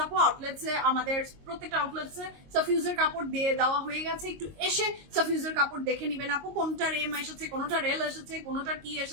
আপু, আউটলেটসে আমাদের প্রত্যেকটা আউটলেটসে সাফিউজের কাপড় দিয়ে দেওয়া হয়ে গেছে, একটু এসে সাফিউজের কাপড় দেখে নিবেন আপু, কোনটার এম এসেছে, কোনটার এল এসেছে, কোনটার কি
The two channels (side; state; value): left; late; 22 ms